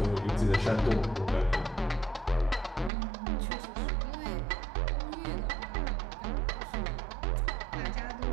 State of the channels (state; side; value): drops out; left; at 2.9 s